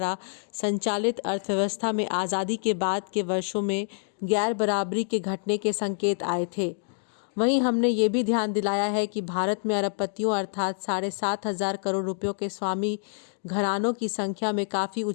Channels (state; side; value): silent; right; 60 dB below the other